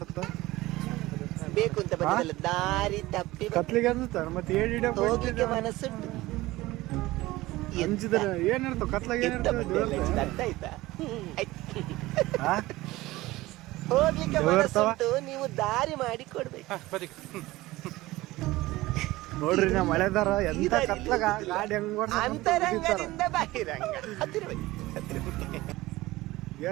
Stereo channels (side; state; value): left; quieter; 18.6 dB